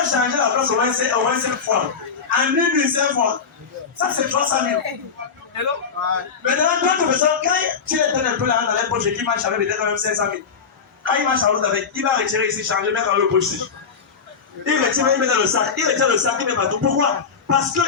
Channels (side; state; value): right; quieter; 5.9 dB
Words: changé la place au moins 5 fois. En une nuit, 5 fois. Ça, c'est 300 000. Maintenant, d'autres personnes, quand tu es un peu là dans les poches qui marche avec peut-être même 500 000. Quand il marche à l'autre avec, il va retirer ici, changer, mettre dans le poche ici. Il retire, il met dans le sac. Il retire le sac, il met partout. Pourquoi? Parce